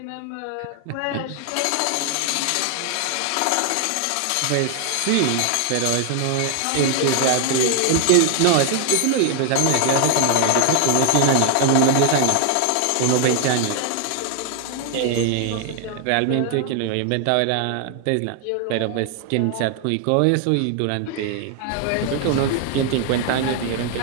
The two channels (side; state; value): both; different; correlation 0.00